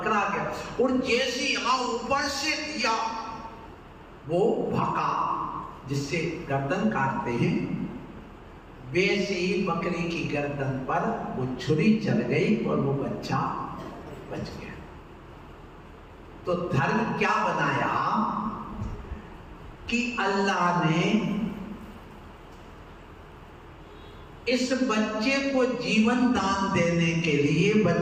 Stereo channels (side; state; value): both; identical; correlation 1.00